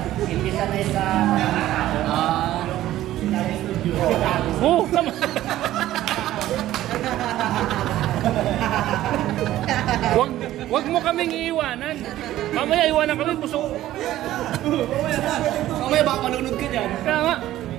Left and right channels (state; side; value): quieter; left; 14.1 dB